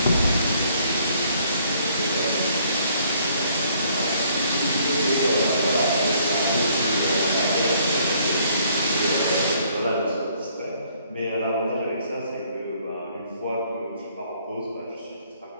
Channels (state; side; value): inverted; both; correlation -0.64